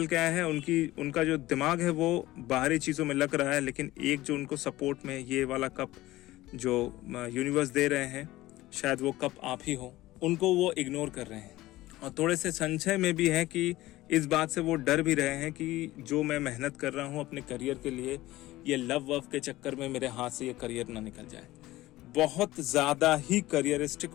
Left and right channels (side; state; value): right; quieter; 17.2 dB